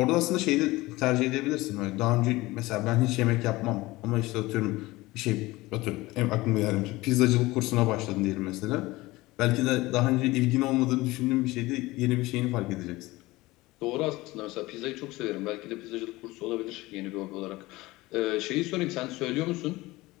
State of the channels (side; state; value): right; quieter; 19.9 dB